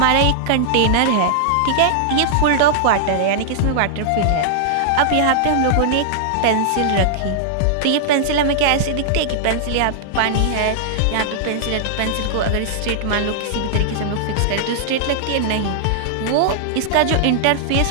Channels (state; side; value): different; both; correlation -0.01